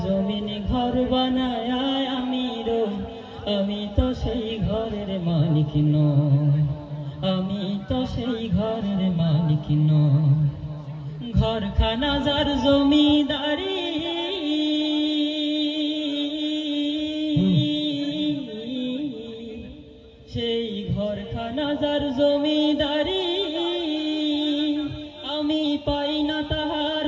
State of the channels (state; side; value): identical; both; correlation 1.00